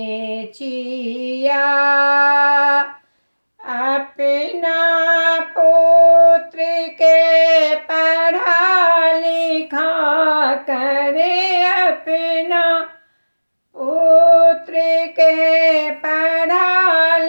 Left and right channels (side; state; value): both; inverted; correlation -1.00